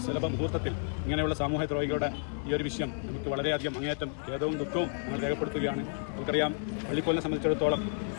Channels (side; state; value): right; silent; 57 dB below the other